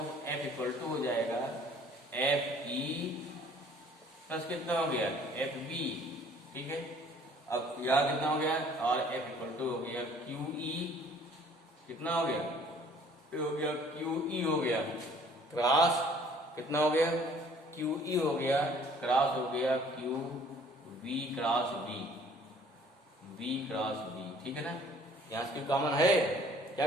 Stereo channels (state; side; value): normal; both; correlation 0.55